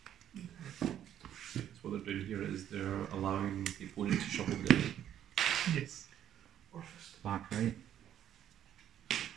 So what they're doing here is they're allowing the opponent to shuffle the deck. Yes. Orfist. Back right.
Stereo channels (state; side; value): quieter; left; 10.7 dB